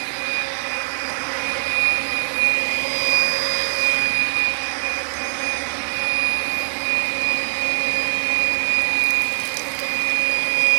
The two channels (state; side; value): silent; left; digital silence